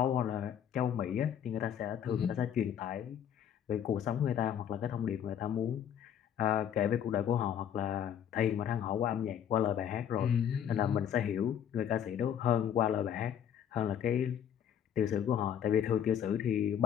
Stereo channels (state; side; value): quieter; right; 9.2 dB